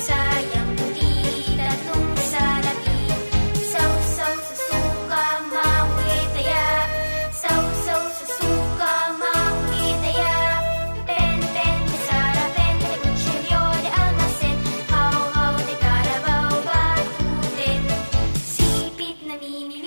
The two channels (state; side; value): inverted; both; correlation -1.00